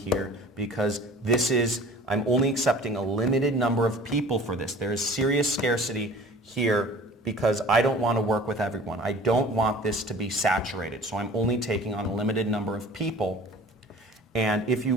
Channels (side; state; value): both; normal; correlation 0.44